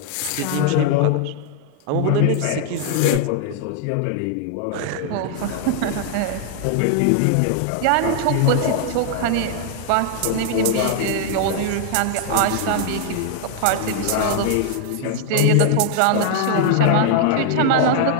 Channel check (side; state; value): both; different; correlation 0.00